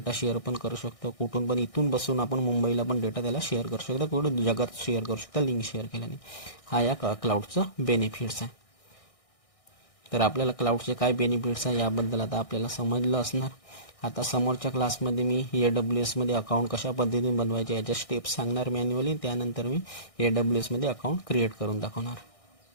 शेअर पण करू शकतो. कुठून पण, इथून बसून आपण मुंबईला पण डेटा त्याला शेअर करू शकतो, कुठं जगात शेअर करू शकता लिंक शेअर केल्याने. हा या क्लाउडचा बेनिफिट्स आहे. तर आपल्याला क्लाउडचे काय बेनिफिट्स आहे याबद्दल आता आपल्याला समजलं असणार. आता समोरच्या क्लासमध्ये मी AWS मध्ये अकाउंट कशा पद्धतीने बनवायचे याच्या स्टेप्स सांगणार मॅन्युअली. त्यानंतर मी AWS मध्ये अकाउंट क्रिएट करून दाखवणार.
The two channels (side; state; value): right; late; 1.6 ms